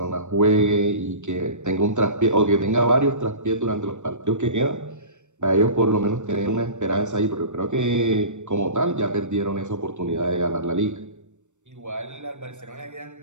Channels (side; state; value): left; late; 0.84 ms